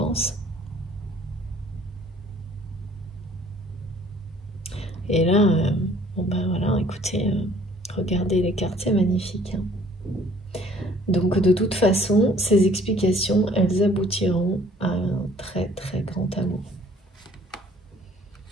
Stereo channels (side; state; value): both; normal; correlation 0.57